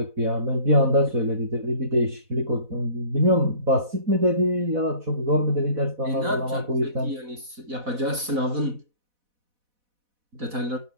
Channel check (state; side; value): late; left; 4.1 ms